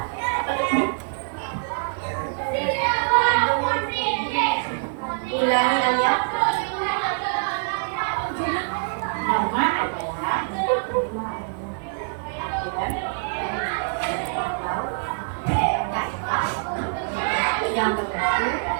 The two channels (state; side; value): silent; left; digital silence